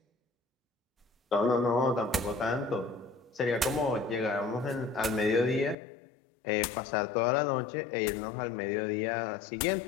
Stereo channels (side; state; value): right; drops out; at 5.8 s